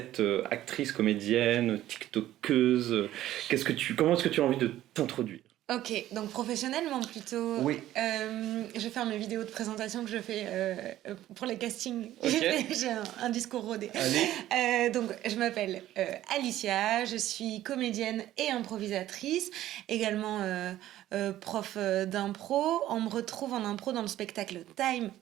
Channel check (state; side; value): quieter; left; 13.7 dB